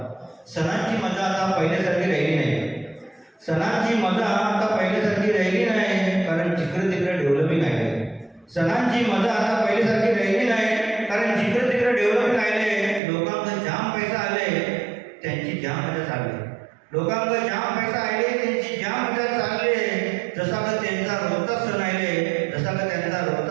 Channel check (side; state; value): left; drops out; at 13.0 s